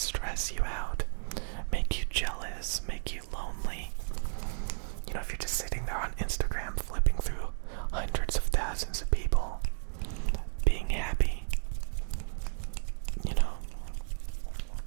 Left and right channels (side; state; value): left; silent; digital silence